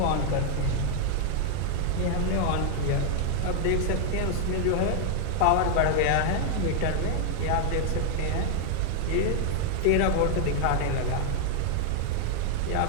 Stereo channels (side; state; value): both; different; correlation 0.00